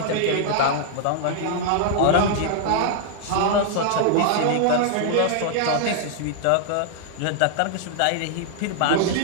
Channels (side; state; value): both; different; correlation 0.00